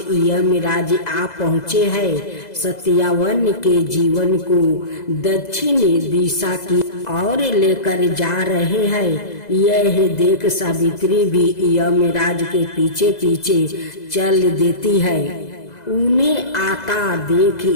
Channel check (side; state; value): right; late; 2.0 ms